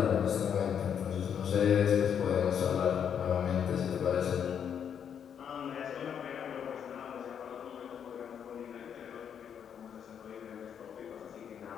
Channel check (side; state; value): right; quieter; 8.2 dB